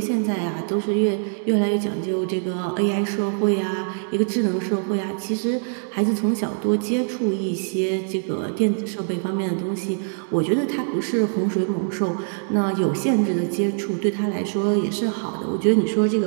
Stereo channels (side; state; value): left; silent; digital silence